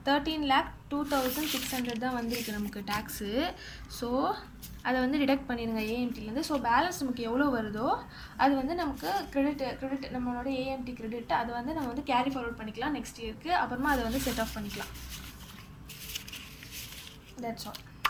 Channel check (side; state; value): both; identical; correlation 1.00